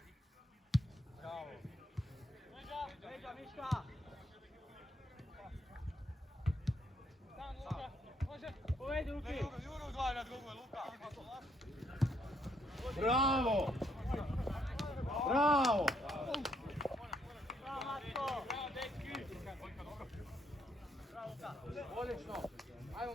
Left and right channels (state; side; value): normal; both; correlation 0.72